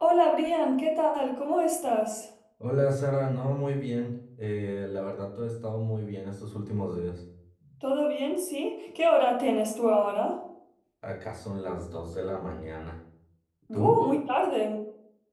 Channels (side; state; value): both; identical; correlation 1.00